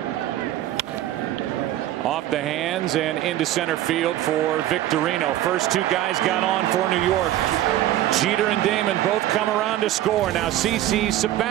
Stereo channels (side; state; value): left; quieter; 13.6 dB